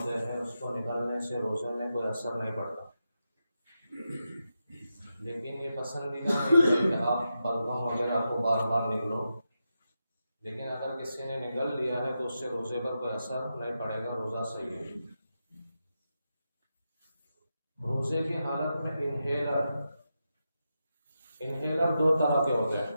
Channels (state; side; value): inverted; both; correlation -0.88